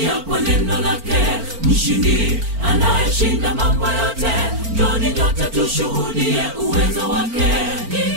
kwa neno lake. Mshindi anayeshinda mambo yote, njoni nyote tushuhudie uwezo wake.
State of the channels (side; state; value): left; late; 4.4 ms